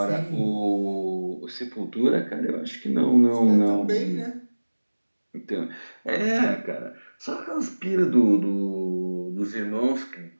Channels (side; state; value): both; inverted; correlation -1.00